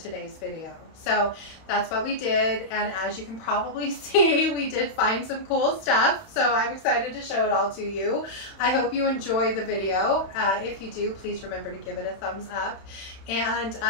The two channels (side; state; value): right; late; 31 ms